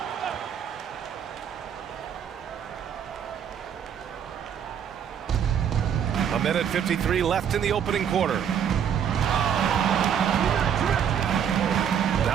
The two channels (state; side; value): quieter; left; 8.4 dB